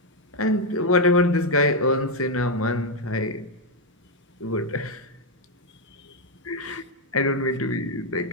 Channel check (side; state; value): both; normal; correlation 0.02